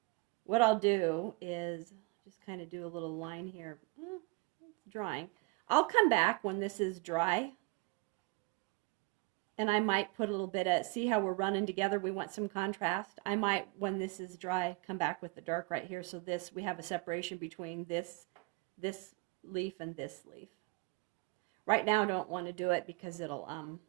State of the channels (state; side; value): quieter; left; 26.4 dB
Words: what I'll do is just kind of do a little line here. It's drying. I'll come back when this is dry, and I might put a little bit of, see how we're running together, we want some contrast. I might, when this is dry, come back with the dark right here, so this, we have a separation between this leaf and this leaf. Right now I don't want to do it because it'll